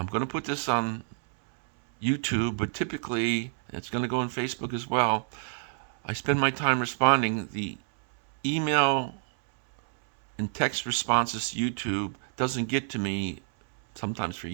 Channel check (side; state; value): left; silent; 59 dB below the other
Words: going to put this on YouTube, but typically it's going to go on Facebook as well. I spend my time responding. The email and text responses to YouTube doesn't get to me sometimes for